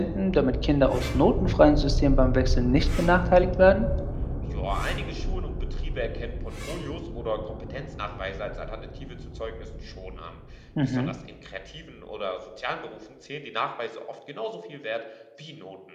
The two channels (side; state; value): both; identical; correlation 1.00